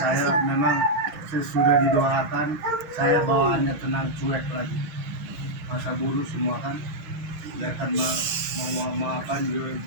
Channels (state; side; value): late; left; 7.0 ms